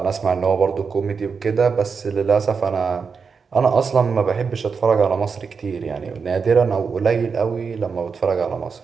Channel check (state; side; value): quieter; left; 5.5 dB